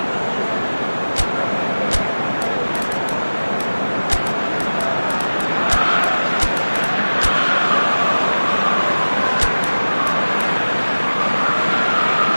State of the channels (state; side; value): inverted; both; correlation -1.00